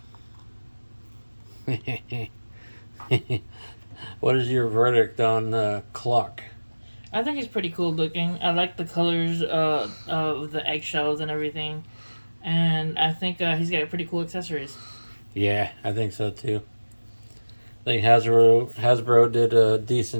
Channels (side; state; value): both; inverted; correlation -1.00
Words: What is your verdict on Cluck? I think he's pretty cool looking. I like the colors of the eggshells and everything. And I think he's got pretty cool accessories. Yeah, I think so too. I think Hasbro did a